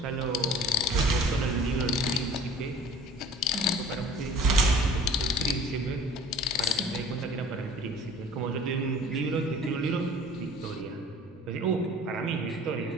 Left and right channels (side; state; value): both; normal; correlation 0.48